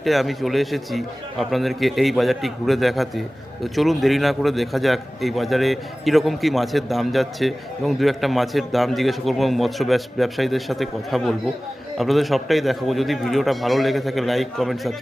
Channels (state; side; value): normal; both; correlation 0.97